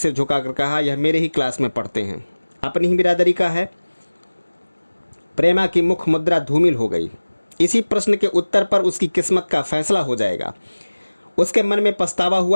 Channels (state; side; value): inverted; both; correlation -1.00